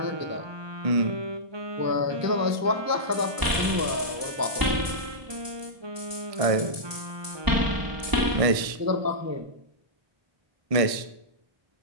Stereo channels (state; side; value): late; left; 1.0 ms